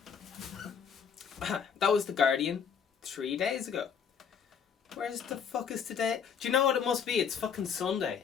That was The Guardian 3 days ago. Where's the fuck is today? Do you know what it must be? It's fucking Sunday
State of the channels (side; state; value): right; quieter; 7.0 dB